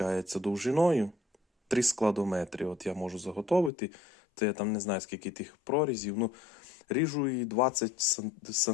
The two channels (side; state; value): right; drops out; at 3.7 s